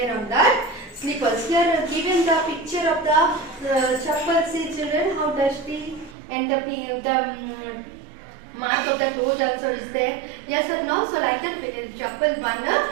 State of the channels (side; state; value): left; drops out; at 6.2 s